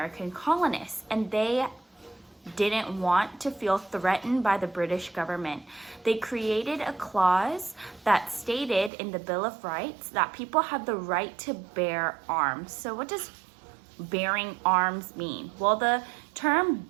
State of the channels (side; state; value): left; drops out; at 8.9 s